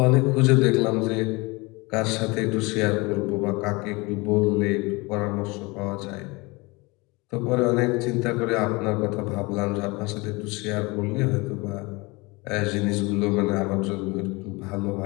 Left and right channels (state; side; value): quieter; right; 25.2 dB